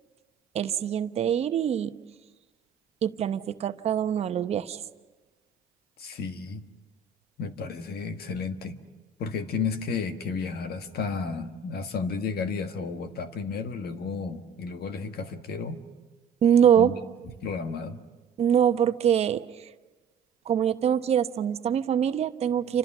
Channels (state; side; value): quieter; left; 5.7 dB